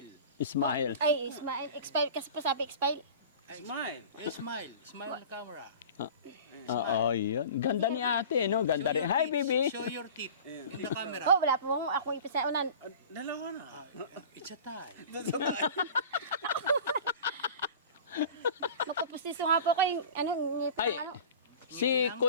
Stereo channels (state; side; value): inverted; both; correlation -0.39